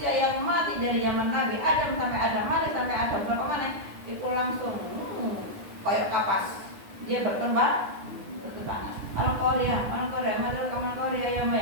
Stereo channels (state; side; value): late; left; 9.8 ms